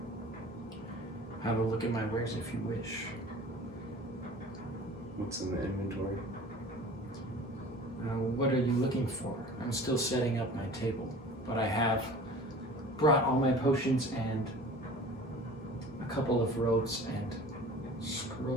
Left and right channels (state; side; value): normal; both; correlation 0.42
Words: have a look at my wares if you wish. What's in the inventory? What are you looking for? I'm still setting up my table, but I have brought all my potions and a couple of robes and